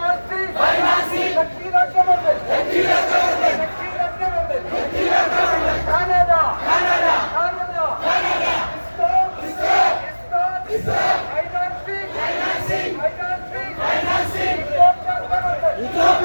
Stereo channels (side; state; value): both; inverted; correlation -1.00